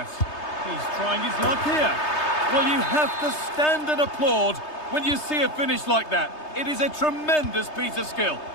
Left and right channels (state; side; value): late; right; 3.3 ms